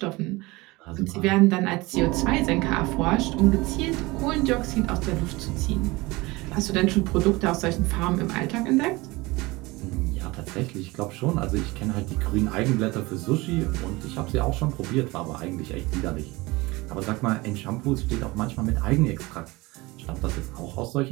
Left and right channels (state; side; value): quieter; left; 22.3 dB